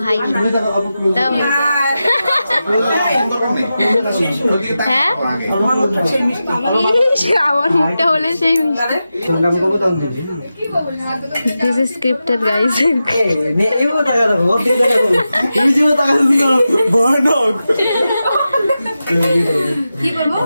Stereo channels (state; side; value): inverted; both; correlation -0.92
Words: হাই দাও। হ্যাঁ আমার মুখটা হলে সেই this is scripted guys.